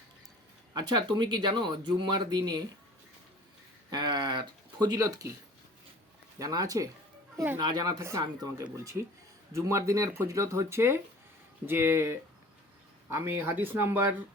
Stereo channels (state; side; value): normal; both; correlation 0.46